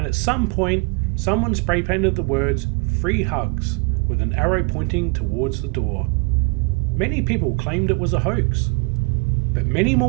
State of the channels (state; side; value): quieter; left; 30.4 dB